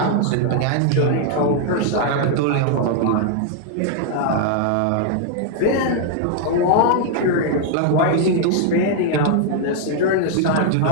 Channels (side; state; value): both; different; correlation 0.00